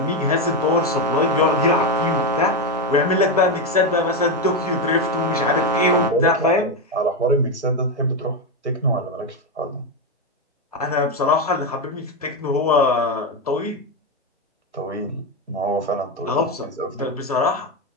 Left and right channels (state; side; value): normal; both; correlation 0.09